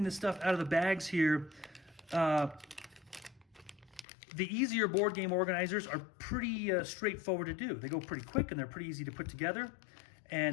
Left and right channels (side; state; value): right; drops out; at 4.0 s